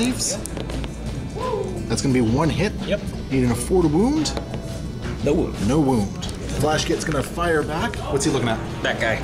That's going to be 1 hit. Yep. Needing a 4 to wound. No wound. No wound. Flash kit's going to fire back. What's he looking at? That guy.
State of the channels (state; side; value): identical; both; correlation 1.00